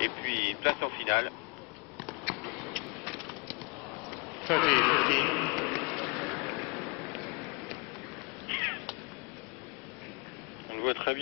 Et puis place en finale. 30-15. On le voit très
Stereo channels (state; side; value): quieter; right; 30.0 dB